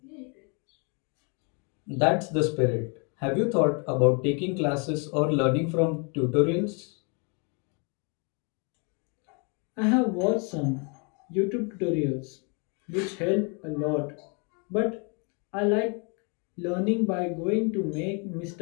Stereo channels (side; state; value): right; quieter; 35.4 dB